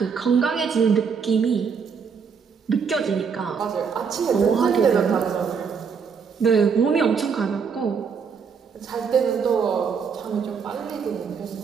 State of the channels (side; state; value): left; quieter; 6.1 dB